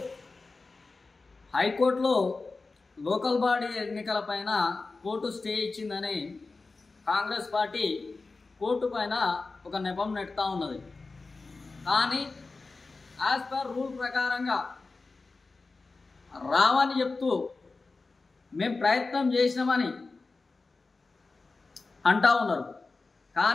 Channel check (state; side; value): quieter; right; 3.8 dB